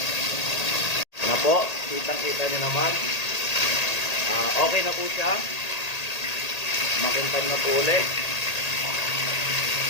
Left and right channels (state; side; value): late; right; 1.8 ms